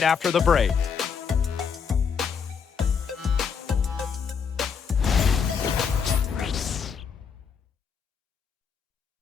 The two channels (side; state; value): right; quieter; 6.4 dB